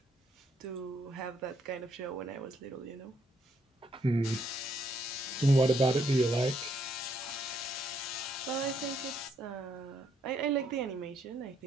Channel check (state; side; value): normal; both; correlation 0.72